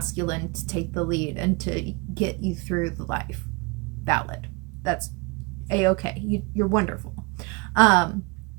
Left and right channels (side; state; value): left; quieter; 28.4 dB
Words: to take the lead and to get you through the life. Valid. That's A-okay. You're wonderful.